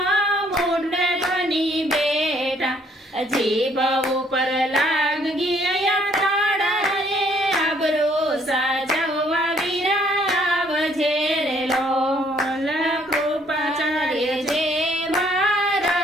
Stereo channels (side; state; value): both; normal; correlation 0.64